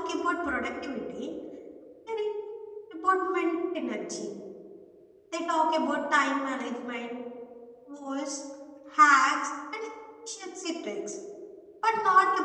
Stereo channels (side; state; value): both; identical; correlation 1.00